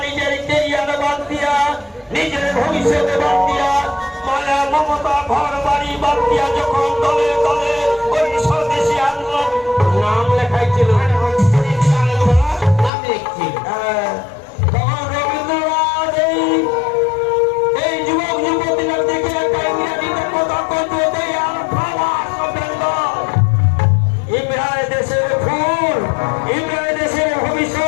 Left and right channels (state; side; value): drops out; right; at 12.9 s